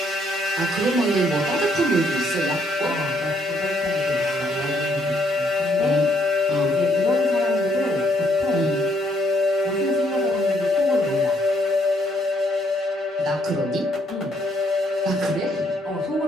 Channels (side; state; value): both; normal; correlation 0.71